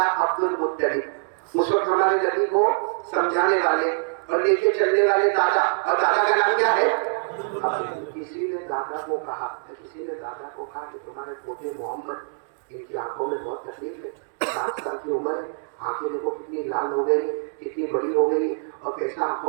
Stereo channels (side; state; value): left; silent; 62 dB below the other